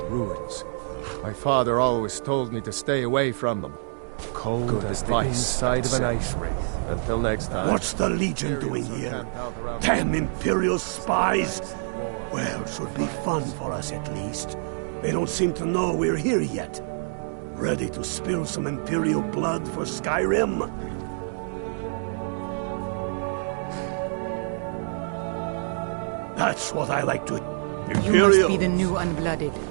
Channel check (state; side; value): silent; left; 61 dB below the other